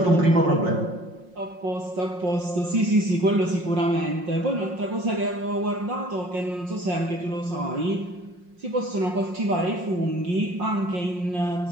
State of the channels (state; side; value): late; left; 5.6 ms